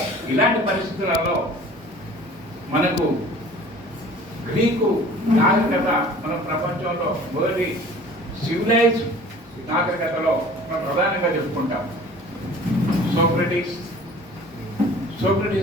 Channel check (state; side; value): normal; both; correlation 0.47